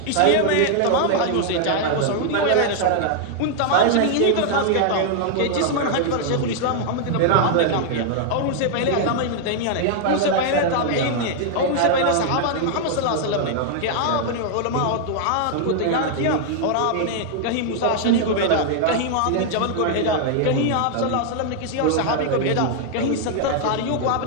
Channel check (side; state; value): both; different; correlation -0.01